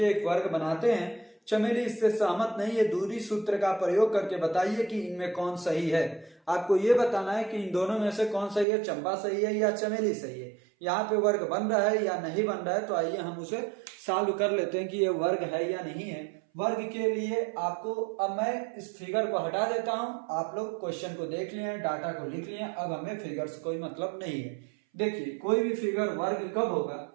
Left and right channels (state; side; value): drops out; left; at 8.7 s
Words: एक वर्ग बनाते हैं। चमेली इससे सहमत नहीं है, दूरी सूत्र का प्रयोग करके बताइए कि इनमें कौन सही है। आपको ये बताना है कि इन दोनों में से कौन सही है, चंपा सही है या चमेली सही है। यहाँ पे वर्ग बन रहा है या नहीं बन रहा है, तो आइए हम उसे सॉल्व कर लेते हैं कि ये वर्ग है या नहीं है। वर्ग के लिए आपको, अब मैं इस फिगर को हटा देता हूं, आप लोग क्वेश्चन को देख लिए, डाटा को लिख लिए, अब हमें फिगर से कोई मतलब नहीं है। देखिए कोई भी फिगर वर्ग कब होगा,